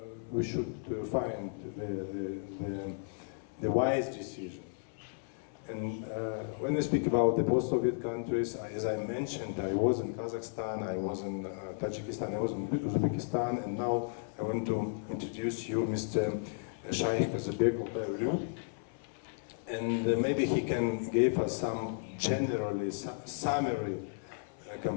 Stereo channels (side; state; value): right; silent; 55 dB below the other